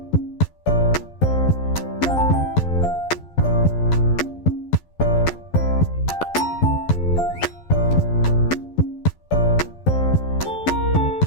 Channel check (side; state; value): right; late; 12 ms